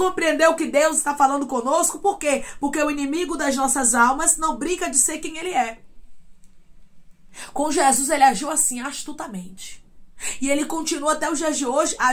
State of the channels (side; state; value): both; identical; correlation 1.00